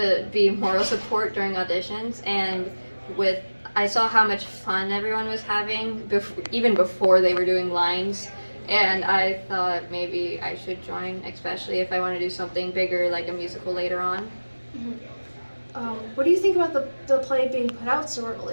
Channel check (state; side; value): inverted; both; correlation -1.00